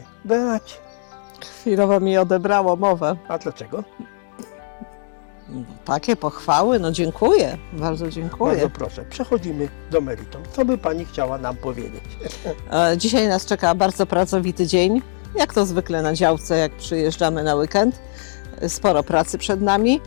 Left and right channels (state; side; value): silent; right; digital silence